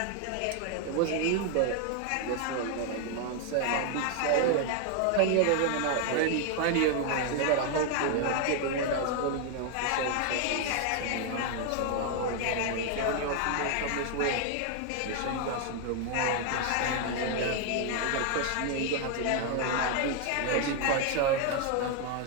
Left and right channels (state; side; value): different; both; correlation 0.01